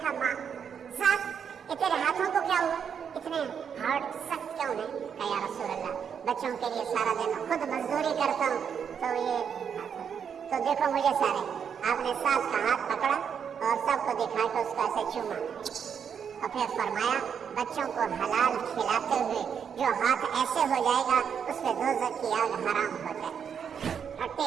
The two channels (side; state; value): left; quieter; 7.4 dB